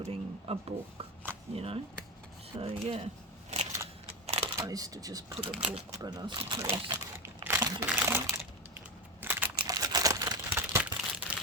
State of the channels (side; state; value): both; normal; correlation 0.16